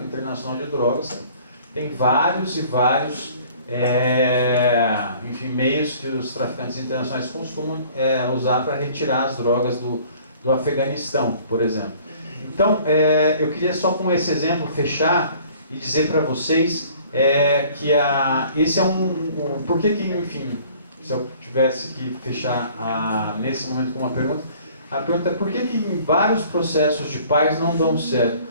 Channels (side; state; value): both; inverted; correlation -0.53